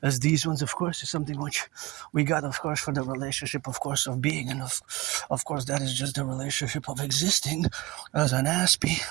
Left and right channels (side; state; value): left; quieter; 19.9 dB